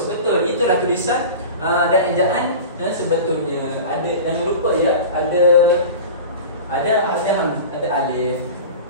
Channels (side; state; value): both; inverted; correlation -0.33